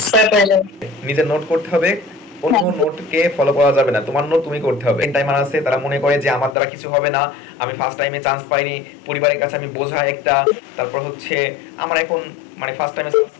করা প্রয়োজন। নিজের নোট করতে হবে, অন্য নোটকে ফলো করা যাবে না, তোমার নোট তুমি করতে হবে। টাইমার আছে তারা মনে করে যে আমার দ্বারা কিছু হবে না, আমি ফার্স্ট টাইমে চান্স পাইনি, পরিবারের কাছে আমি বোঝা একটা, তারপর হচ্ছে আমার এখন মানে ফার্স্ট টাইমে চান্স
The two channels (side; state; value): right; drops out; at 6.6 s